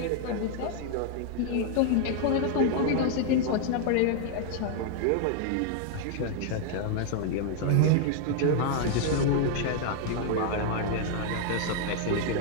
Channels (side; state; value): both; different; correlation 0.00